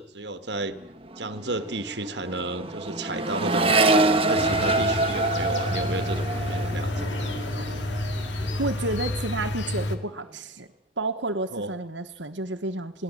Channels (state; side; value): normal; both; correlation 0.24